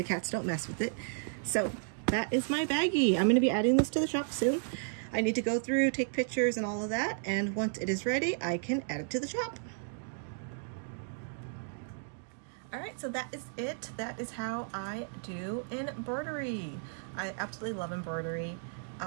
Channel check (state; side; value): silent; left; digital silence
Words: cats don't mess with it. So that is my baggie. I'm going to be adding this to the shop soon. I need to go through, take pictures and all of that, and once it is ready, I can add it to the shop. Alright, so that is it. That is how I do embroidery. I absolutely love embroidery.